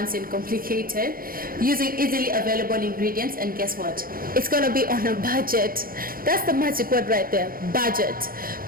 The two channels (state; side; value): late; left; 0.42 ms